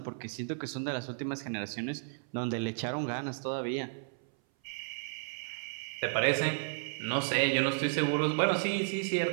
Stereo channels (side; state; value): left; silent; 56 dB below the other